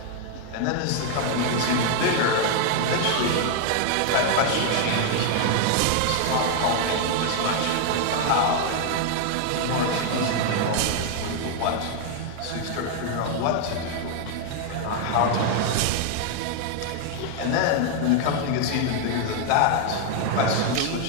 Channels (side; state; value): both; different; correlation 0.00